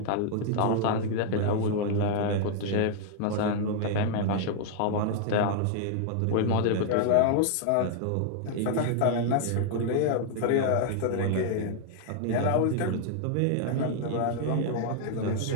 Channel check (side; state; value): both; different; correlation 0.00